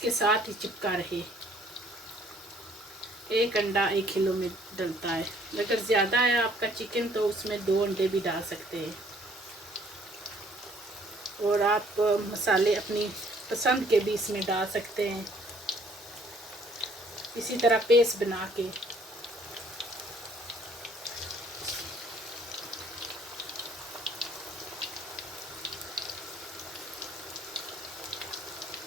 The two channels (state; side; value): normal; both; correlation 0.60